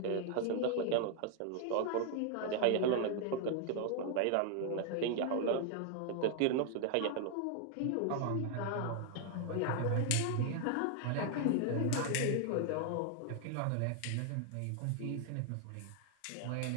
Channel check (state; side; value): different; both; correlation 0.00